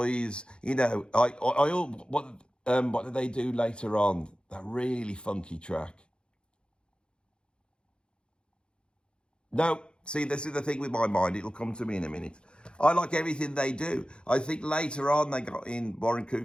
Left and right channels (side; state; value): right; late; 0.053 ms